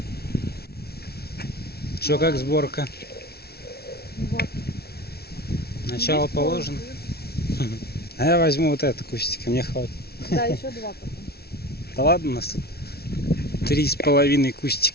Что, как сборка? Вот. Начало положено? А я возьму вот это кустик, мне хватит. Да, еще два потом. Да ладно, у нас тут 3,5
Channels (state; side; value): late; right; 0.45 ms